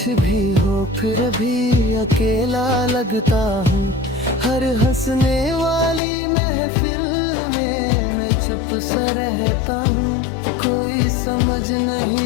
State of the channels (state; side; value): drops out; right; at 6.0 s